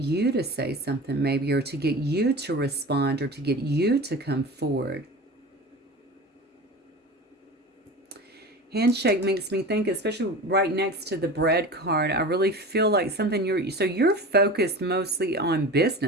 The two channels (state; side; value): normal; both; correlation 0.33